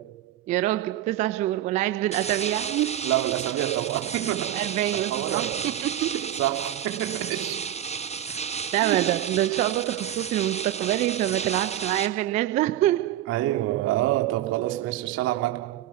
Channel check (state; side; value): quieter; left; 12.4 dB